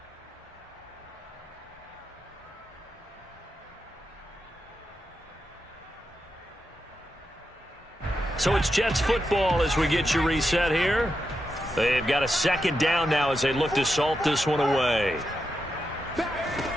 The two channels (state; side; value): normal; both; correlation 0.87